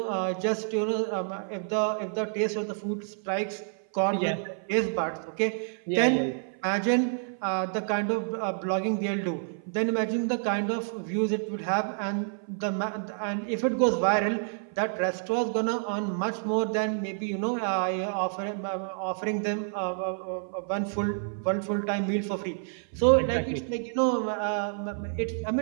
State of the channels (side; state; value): left; silent; 57 dB below the other